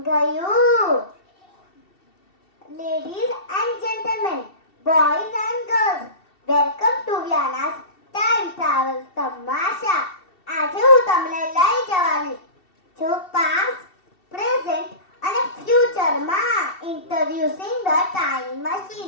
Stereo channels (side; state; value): right; late; 2.7 ms